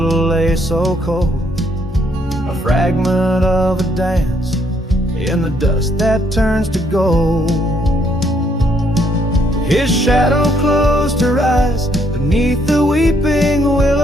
lay so cold, a fragment of a dance in the dust that turns to gold. His shadow closed her eyes beneath the weeping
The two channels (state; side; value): normal; both; correlation 0.70